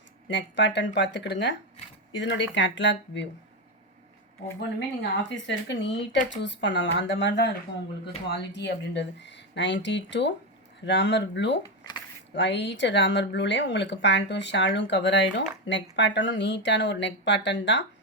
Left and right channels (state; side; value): normal; both; correlation 0.10